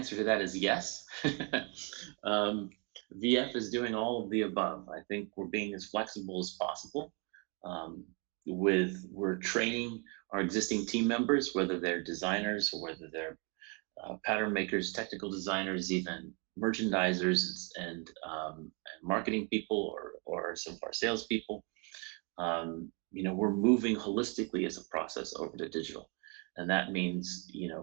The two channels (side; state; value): left; quieter; 32.6 dB